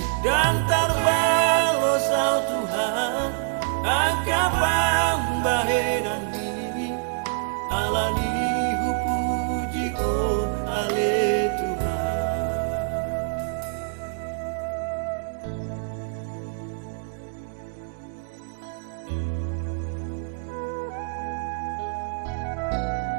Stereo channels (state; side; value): silent; left; digital silence